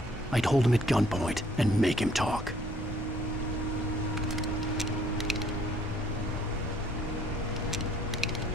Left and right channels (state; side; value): normal; both; correlation 0.62